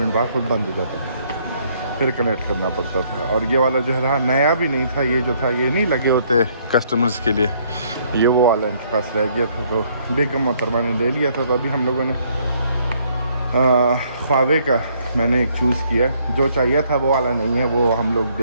बाद खुद बंद हो जाता था, फिर कनेक्ट करना पड़ता था। और ये वाला जो है नया भी नहीं था, ये जो था ये नहीं लगे होते कस्टमर्स के लिए, ये वो वाला इनके पास रह गया था, तो बेगम मोहतरमा ने ले लिया था। तो अभी हम लोगों ने ख्वावे का मैंने एक चूज़ किया, जो चाहिए था वो वाला नहीं है, वो हम लोग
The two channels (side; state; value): both; inverted; correlation -0.67